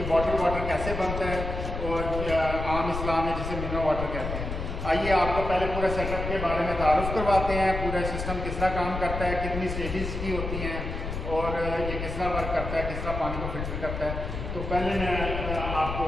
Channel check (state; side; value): noise; left; rumble, 5 dB below the sound